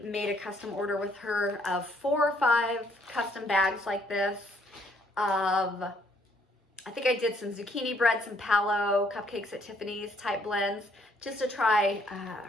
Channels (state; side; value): normal; both; correlation 0.67